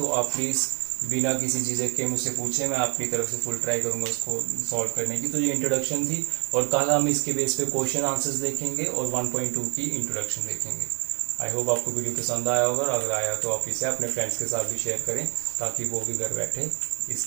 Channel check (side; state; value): left; quieter; 35.3 dB